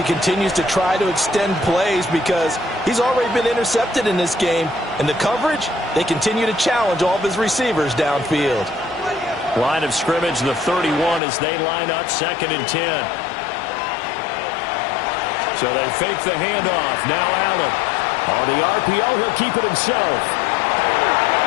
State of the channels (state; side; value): drops out; right; at 11.2 s